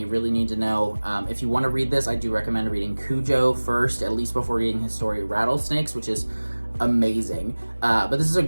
really need to know. If you want to read this, I do recommend reading Cujo first, at least before reading his story Rattlesnakes, which is amazing. But this is a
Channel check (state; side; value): inverted; both; correlation -1.00